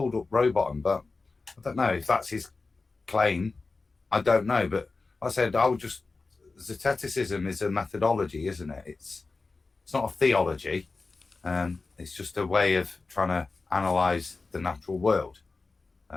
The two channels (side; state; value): right; quieter; 3.9 dB